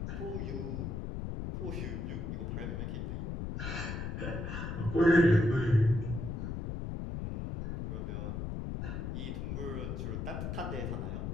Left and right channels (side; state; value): left; noise; rumble, 3 dB below the sound